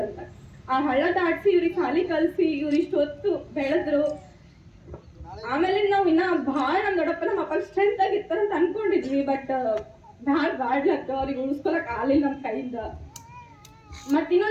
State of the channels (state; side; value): identical; both; correlation 1.00